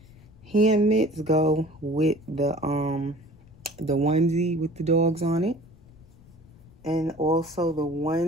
hand mitts go with the onesie with the dogs on it. And also the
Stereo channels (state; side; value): noise; left; rumble, 25 dB below the sound